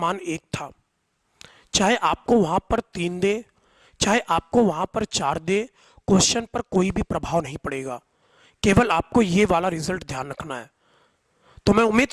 1 था। चाहे आपको वहां पर 3 दे, चाहे आपको वहां पर 4 दे, क्वेश्चन पर कोई भी प्रभाव नहीं पड़ेगा, केवल आपको ये वाला रिजल्ट ध्यान रखना है। तो मैं उम्मीद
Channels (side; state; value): both; identical; correlation 1.00